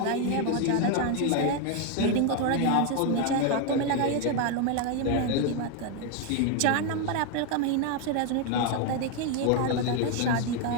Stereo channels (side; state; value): both; different; correlation 0.01